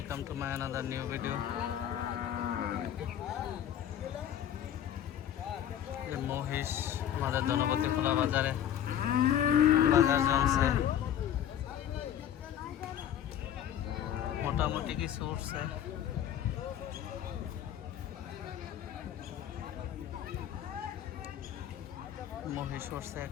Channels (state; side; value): quieter; right; 10.4 dB